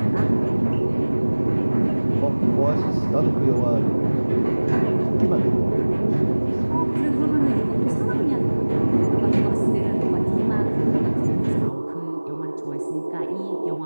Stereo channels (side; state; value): both; inverted; correlation -1.00